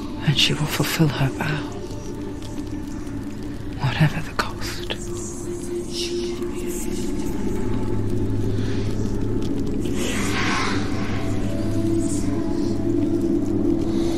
And she will fulfill her vow, whatever the cost.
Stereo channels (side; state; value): both; identical; correlation 1.00